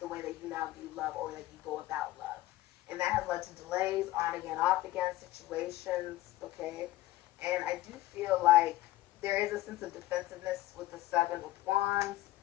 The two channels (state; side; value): quieter; right; 16.4 dB